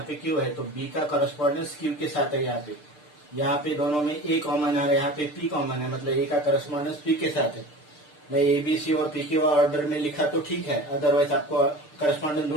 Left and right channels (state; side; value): late; right; 6.7 ms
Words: पे क्यू है तो बी का करस्पॉन्डेंस क्यू के साथ है यहाँ पे दोनों में ए कॉमन है और यहाँ पे पी कॉमन है मतलब ए का करस्पॉन्डेंस पी के साथ है मैं ए बी सी और पी क्यू ऑर्डर में लिखा तो ठीक है अदरवाइज आपको करस्पॉन्डेंस